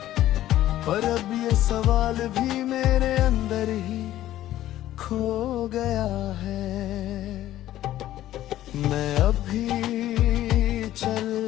पर अब ये सवाल भी मेरे अंदर ही खो गया है। मैं अब भी चल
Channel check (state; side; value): quieter; right; 13.6 dB